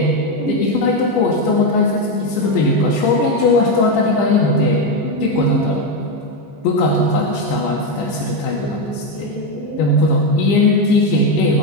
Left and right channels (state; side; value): late; right; 15 ms